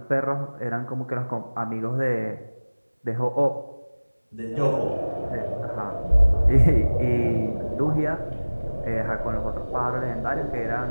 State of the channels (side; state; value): both; inverted; correlation -1.00